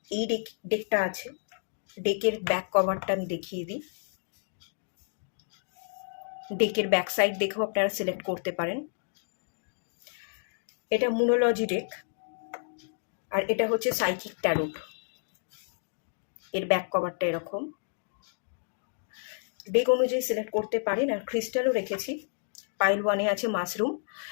এই ডেকটা আছে। ডেকের ব্যাক কভারটা আমি দেখিয়ে দিই। ডেকের ব্যাক সাইড দেখেও আপনারা সিলেক্ট করতে পারেন। এটা মুনোলজি ডেক, আর এটা হচ্ছে সাইকিক ট্যারোট। এর ব্যাক কভারটা এরকম। ডেক অনুযায়ী সিলেক্ট করতে পারেন। আর ক্রিস্টালও রেখেছি। পাইল ওয়ানে আছে মাশরুম।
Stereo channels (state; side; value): silent; right; digital silence